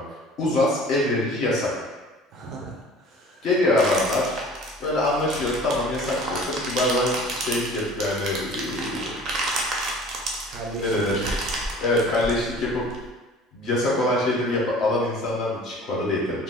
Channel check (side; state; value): both; normal; correlation 0.46